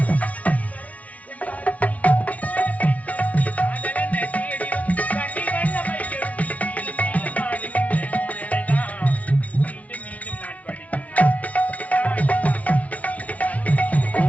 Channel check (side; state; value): right; late; 0.068 ms